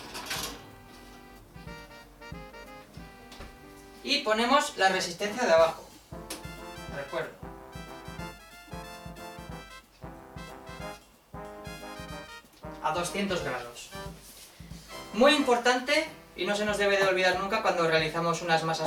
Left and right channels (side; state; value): both; identical; correlation 1.00